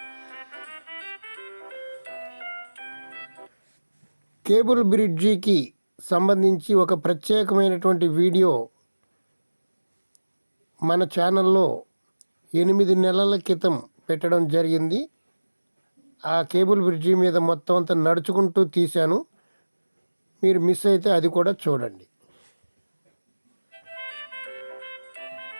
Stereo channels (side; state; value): both; inverted; correlation -1.00